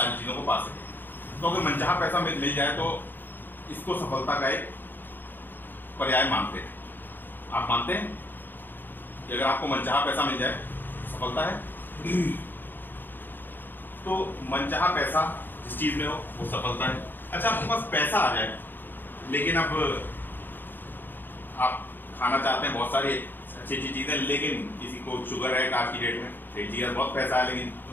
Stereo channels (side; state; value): right; late; 0.094 ms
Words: चीजों को पा सकें। तो अगर मनचाहा पैसा मिल जाए तो इसको सफलता का एक पर्याय मानते हैं। आप मानते हैं कि अगर आपको मनचाहा पैसा मिल जाए सफलता है? तो मनचाहा पैसा जिस चीज में हो वो सफलता है। अच्छा, आपके पास पैसा आ जाए लेकिन अब आप खाना चाहते हैं बहुत सारी अच्छी अच्छी चीजें, लेकिन किसी को शुगर है आज की डेट में, पेट जी बहुत पैसा है लेकिन